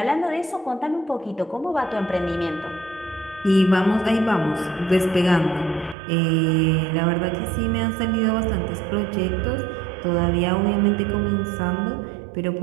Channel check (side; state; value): left; drops out; at 6.0 s